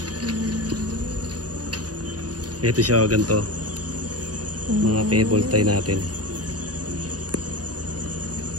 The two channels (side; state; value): left; late; 0.68 ms